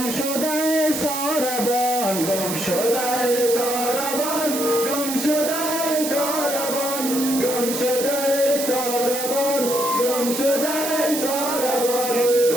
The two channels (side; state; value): right; noise; hiss, 5 dB below the sound